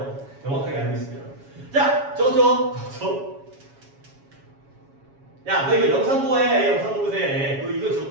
명확하게 알고 있으면. 자, 저거. 야, 너 이거 영상 보해. 영상 보세요. 너 이거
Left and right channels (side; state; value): left; late; 7.2 ms